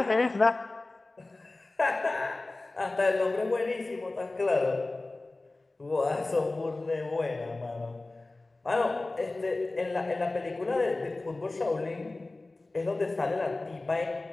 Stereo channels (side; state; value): right; quieter; 3.1 dB